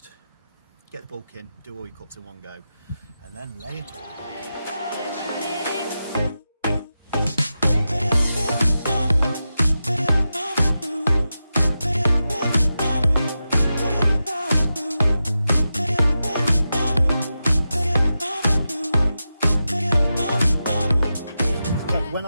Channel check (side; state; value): both; inverted; correlation -0.91